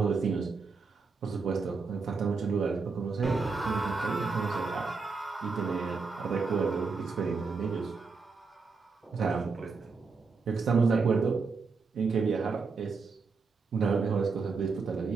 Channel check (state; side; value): quieter; left; 4.6 dB